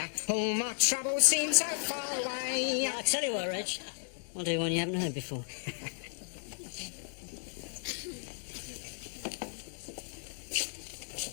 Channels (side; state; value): right; silent; 55 dB below the other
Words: all my troubles seem so far away. I tell you what, Reg. I'll do one you haven't heard before.